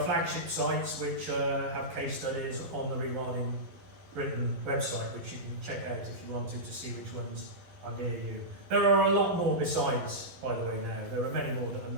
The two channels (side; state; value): left; late; 11 ms